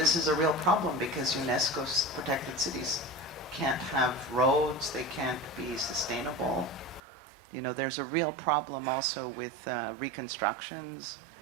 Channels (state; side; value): drops out; left; at 7.0 s